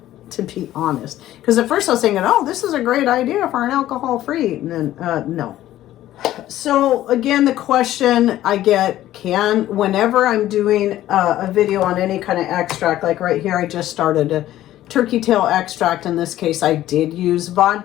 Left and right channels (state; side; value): quieter; right; 13.8 dB